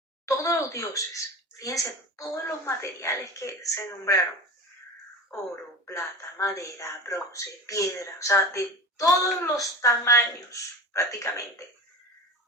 todos los dioses. Fíjense, todos los materiales que se nombraron: oro, plata, madera, bronce, piedra, o sea, de todos los tamaños prácticamente,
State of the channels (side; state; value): both; normal; correlation 0.31